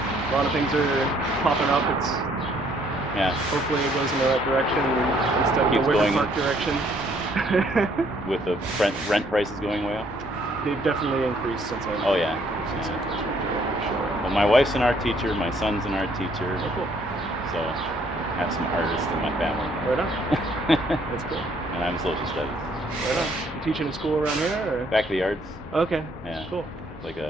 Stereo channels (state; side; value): normal; both; correlation 0.65